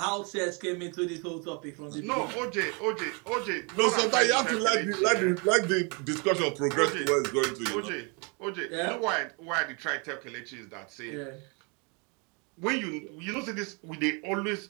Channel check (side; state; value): left; quieter; 33.4 dB